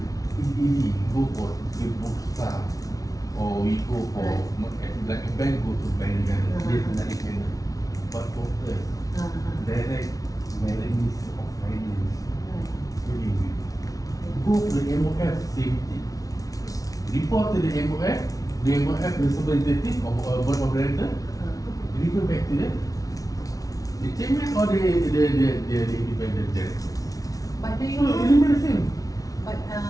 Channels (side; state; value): right; late; 0.18 ms